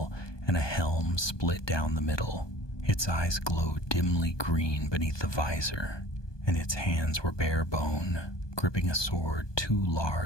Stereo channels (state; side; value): late; right; 1.2 ms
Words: and a helm split down the middle. Its eyes glowed dimly green beneath the visor, and its hands were bare bone, gripping a sword too